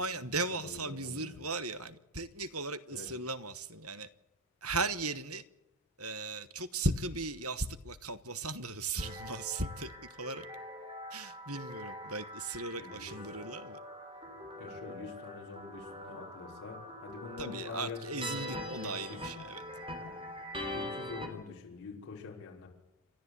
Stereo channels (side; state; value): both; normal; correlation 0.13